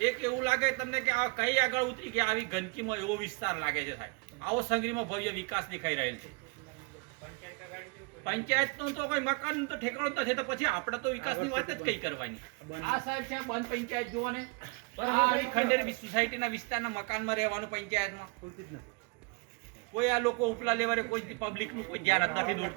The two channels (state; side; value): quieter; left; 32.0 dB